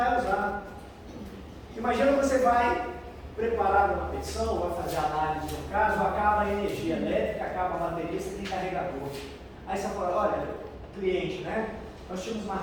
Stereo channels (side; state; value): both; identical; correlation 1.00